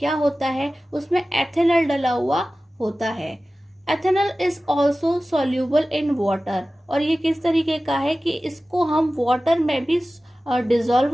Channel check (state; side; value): normal; both; correlation 0.96